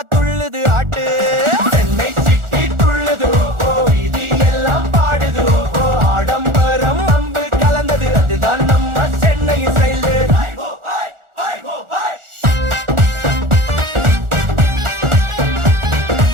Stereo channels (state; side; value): late; left; 1.4 ms